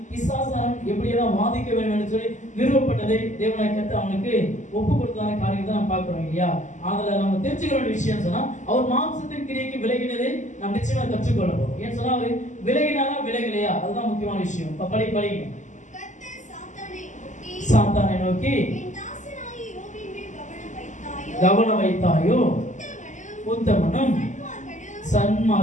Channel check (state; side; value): late; right; 0.35 ms